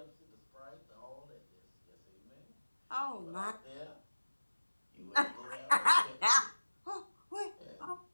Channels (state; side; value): inverted; both; correlation -1.00